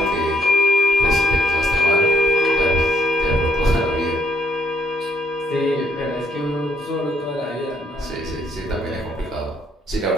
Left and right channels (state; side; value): normal; both; correlation 0.70